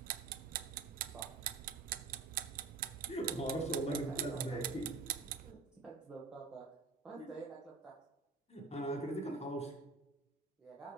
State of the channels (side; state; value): left; quieter; 4.1 dB